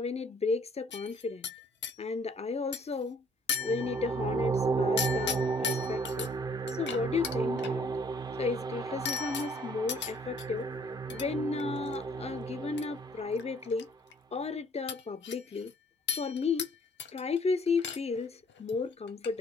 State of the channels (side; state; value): both; normal; correlation 0.60